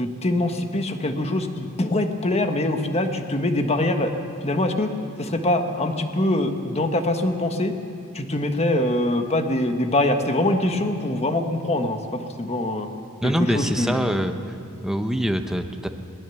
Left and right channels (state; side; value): normal; both; correlation 0.56